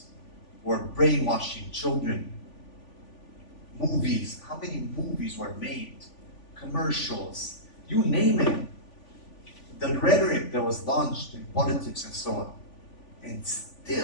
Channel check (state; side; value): late; right; 3.5 ms